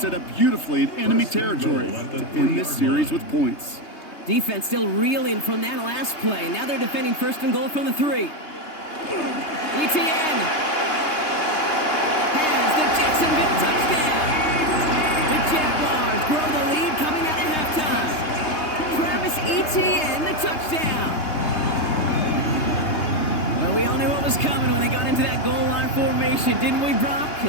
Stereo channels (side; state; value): right; late; 3.2 ms